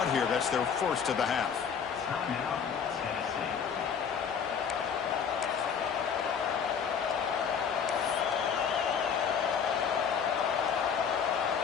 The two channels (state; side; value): quieter; right; 7.0 dB